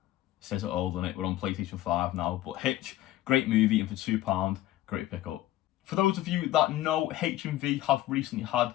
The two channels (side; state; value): right; quieter; 14.8 dB